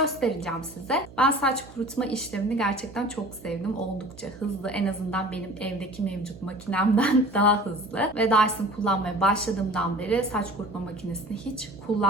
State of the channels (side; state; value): right; noise; hum, 20 dB below the sound